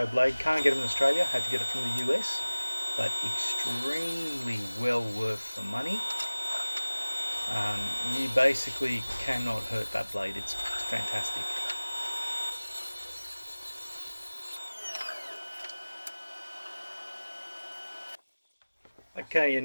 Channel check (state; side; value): inverted; both; correlation -1.00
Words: blade. Can't get it in Australia, had to get it from the US, but extremely well worth the money. You basically cannot hurt that blade. It's fantastic. Okay,